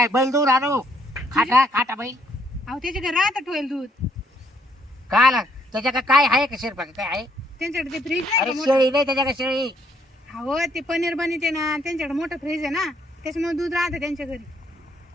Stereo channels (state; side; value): normal; both; correlation 0.70